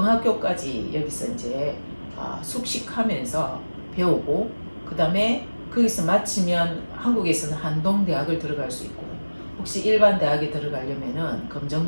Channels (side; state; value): both; inverted; correlation -1.00